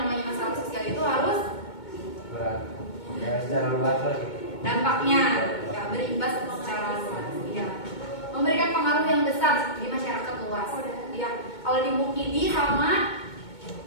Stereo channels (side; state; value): right; late; 2.2 ms